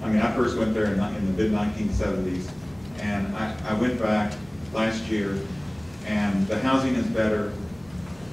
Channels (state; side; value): noise; left; hum, 25 dB below the sound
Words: I mean, I first went there in the mid-1970s, and I went back last year, and the housing is better,